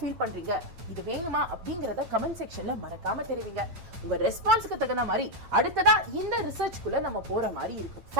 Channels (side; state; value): left; late; 8.9 ms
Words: பண்றீங்க, இது வேணுமா அப்படிங்கறத கமெண்ட் செக்ஷன்ல மறக்காம தெரிவிங்க. உங்க ரெஸ்பான்ஸ்க்கு தகுந்த மாதிரி அடுத்ததா இந்த ரிசர்ச்க்குள்ள நம்ம போற மாதிரி இருக்கும்.